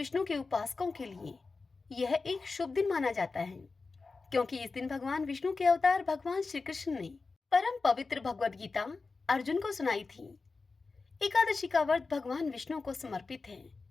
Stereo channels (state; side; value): quieter; right; 4.1 dB